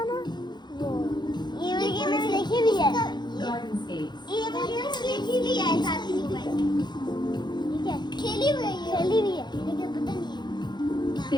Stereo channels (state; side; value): late; right; 0.21 ms